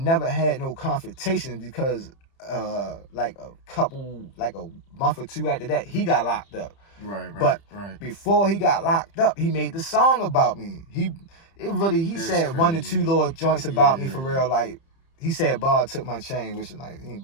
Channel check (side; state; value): right; late; 30 ms